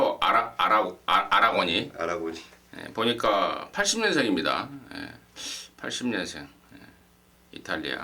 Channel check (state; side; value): identical; both; correlation 1.00